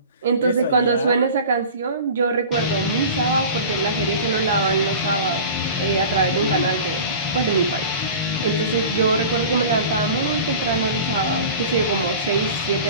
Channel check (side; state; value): both; inverted; correlation -0.37